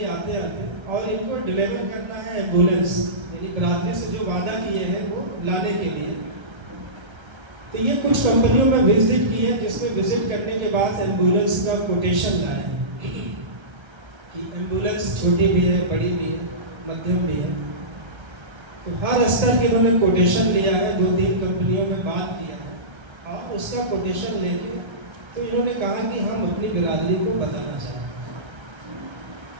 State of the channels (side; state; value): left; late; 1.3 ms